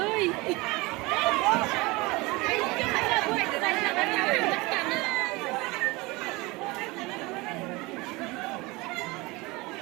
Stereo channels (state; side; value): quieter; left; 23.4 dB